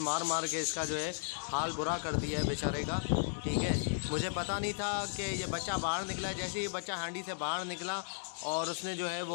मार के इसका जो है हाल बुरा कर दिया है बेचारे का। ठीक है, मुझे पता नहीं था कि ये बच्चा बाहर निकला है। जैसे ही बच्चा हांडी से बाहर निकला और उसने जो है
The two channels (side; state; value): right; silent; digital silence